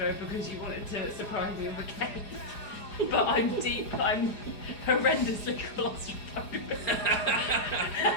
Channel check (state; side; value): late; right; 4.9 ms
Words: because you wanted to surprise me with a cake. But I'm horrendously claustrophobic.